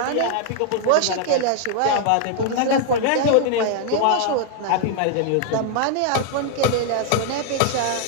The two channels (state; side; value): different; both; correlation 0.00